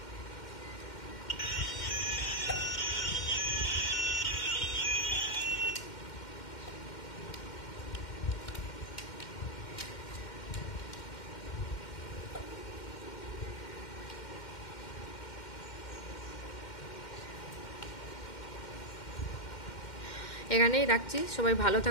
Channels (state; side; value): late; right; 2.1 ms